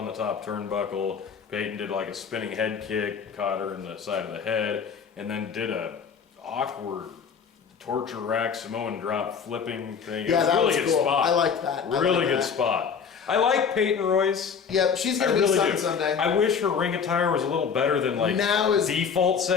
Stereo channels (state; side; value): quieter; right; 6.5 dB